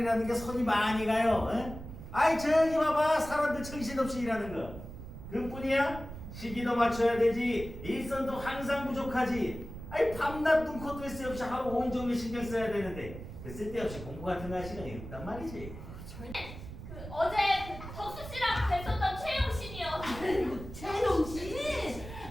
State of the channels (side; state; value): right; noise; rumble, 12 dB below the sound